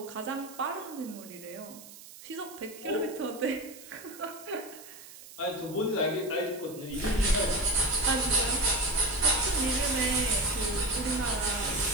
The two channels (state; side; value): noise; right; hiss, 17 dB below the sound